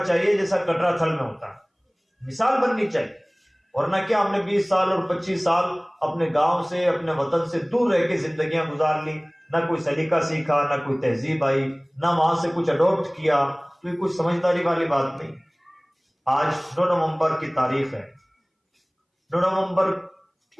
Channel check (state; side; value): identical; both; correlation 1.00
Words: جیسا کٹرا تھل میں ہوتا ہے. مثال بننی چاہیے. ورنہ کیا ہم نے 20 سال اور 25 سال اپنے گاؤں سے، اپنے وطن سے دور رہ کے زندگیاں گزار لی، نہ کوئی سلیقہ سیکھا، نہ کوئی تہذیب آئی، نہ وہاں سے کچھ اڈاپٹ کیا. تو یہ کوئی سمجھداری والی بات نہیں. آج 9 نومبر کی تاریخ ہے. 9 نومبر